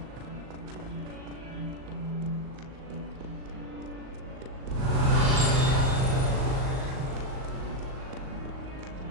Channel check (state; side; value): late; left; 38 ms